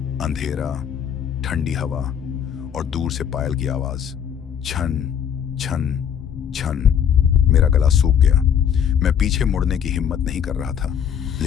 अंधेरा, ठंडी हवा और दूर से पायल की आवाज, छन छन छन। मेरा गला सूख गया। मैं पीछे मुड़ने की हिम्मत नहीं कर रहा था,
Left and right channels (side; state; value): right; quieter; 8.5 dB